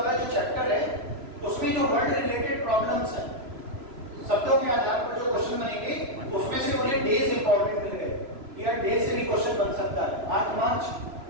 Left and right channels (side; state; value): left; late; 3.0 ms